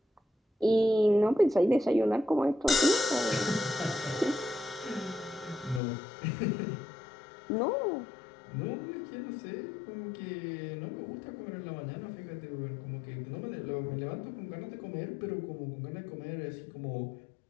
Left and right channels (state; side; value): drops out; right; at 5.8 s